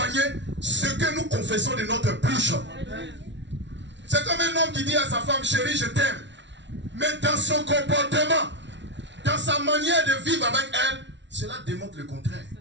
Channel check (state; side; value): late; left; 0.52 ms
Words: ce que nous confessons de notre bouche. C'est comme un homme qui dit à sa femme, chérie, je t'aime. Mais dans son comportement, dans sa manière de vivre avec elle, cela démontre le contraire.